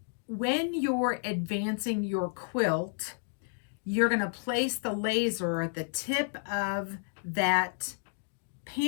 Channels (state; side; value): silent; right; digital silence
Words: when you're advancing your quilt, you're going to place the laser at the tip of that